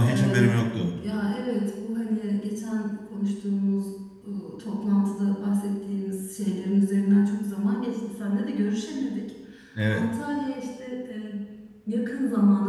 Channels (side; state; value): both; identical; correlation 1.00